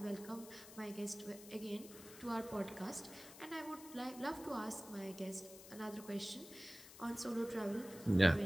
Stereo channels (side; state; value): left; noise; hiss, 16 dB below the sound